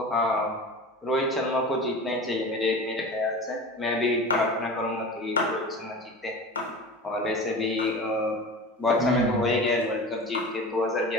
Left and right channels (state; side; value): normal; both; correlation 0.34